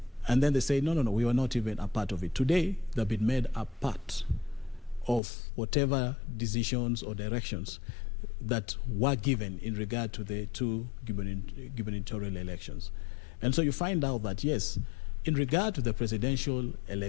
And then they say, no, we were not even a part of it. Today, they've been made a part of whatever decisions or directions that were given in regard to the 2 gubernatorial elections. And so you find out that, yes, in regard to the presidential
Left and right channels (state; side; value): drops out; right; at 5.2 s